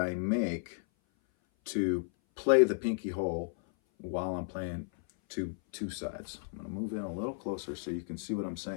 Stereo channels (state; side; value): silent; right; 55 dB below the other